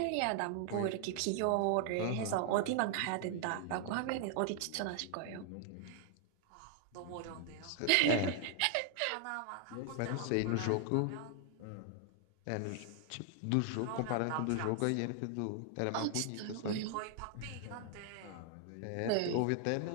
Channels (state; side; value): different; both; correlation 0.00